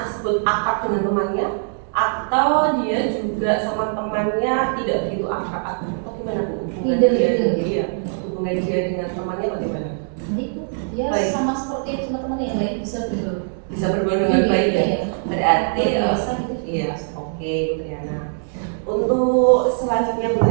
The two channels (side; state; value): left; silent; digital silence